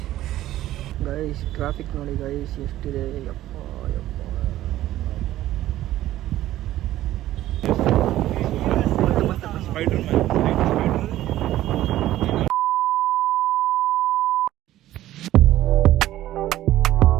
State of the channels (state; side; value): quieter; left; 14.2 dB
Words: ಗೈಸ್ ಟ್ರಾಫಿಕ್ ನೋಡಿ ಗೈಸ್ ಎಷ್ಟಿದೆ, ಯಪ್ಪ ಯಪ್ಪ.